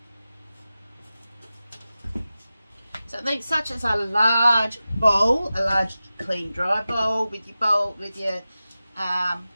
So think such as a large bowl, a large clean dry bowl with your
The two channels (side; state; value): both; inverted; correlation -0.95